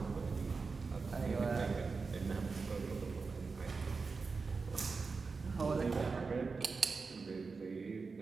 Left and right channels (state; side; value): quieter; left; 4.5 dB